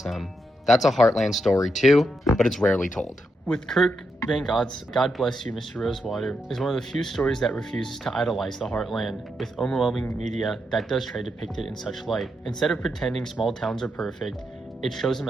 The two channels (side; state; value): both; normal; correlation 0.83